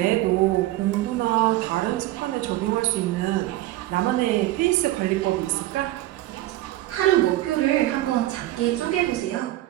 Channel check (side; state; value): left; quieter; 16.0 dB